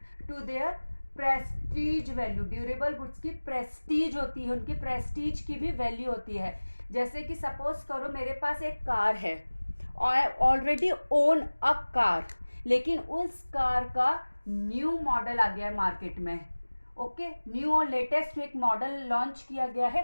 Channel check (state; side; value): inverted; both; correlation -1.00